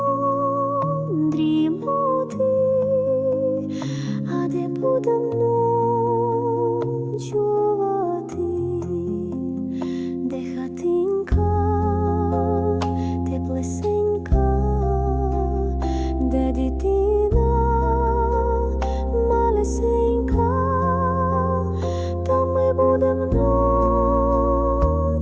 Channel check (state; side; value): identical; both; correlation 1.00